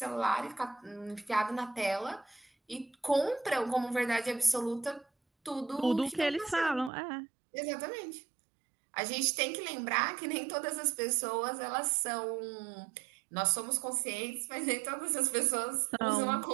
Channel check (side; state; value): left; drops out; at 6.9 s